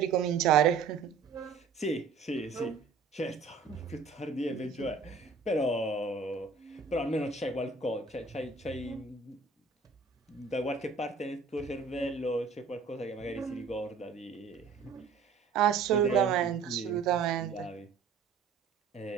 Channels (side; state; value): left; quieter; 5.1 dB